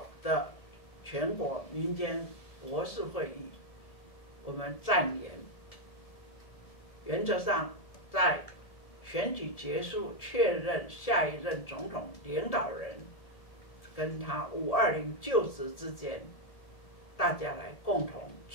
的全国民间国事会议，我们暂延。原则上，在选举结束、确认下一任总统领导人跟他520就职之间，大家来共同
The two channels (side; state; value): right; late; 1.7 ms